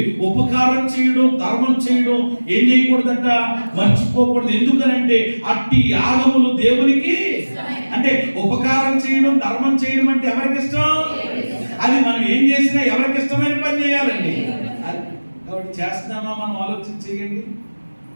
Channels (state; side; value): inverted; both; correlation -1.00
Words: ఉపకారం చేయడం, ధర్మం చేయడం ఏం చేయకూడదట, మర్చిపోకూడదు. ఎందుకనంటే అట్టి యాగములు దేవునికి, అంటే ఉపకారం చేయడం, ధర్మం చేయడం అంటే ఎవరికి ఇష్టం? అది మనం ఏం చేసినా ఎవరికి ఇష్టమైన పని చేయాలండి. కాబట్టి చేస్తున్నామా మనం ఆలోచన చేయండి.